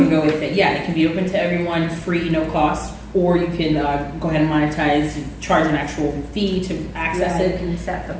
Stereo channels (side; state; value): both; identical; correlation 1.00